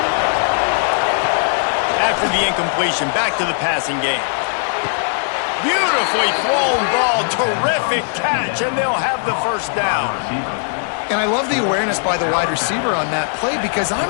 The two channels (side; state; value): right; silent; digital silence